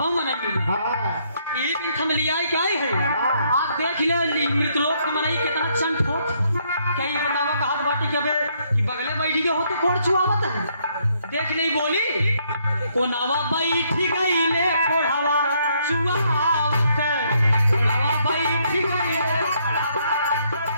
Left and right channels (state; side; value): inverted; both; correlation -0.71